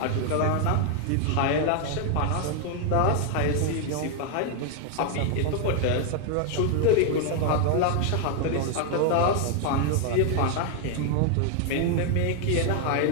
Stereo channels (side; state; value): both; different; correlation 0.00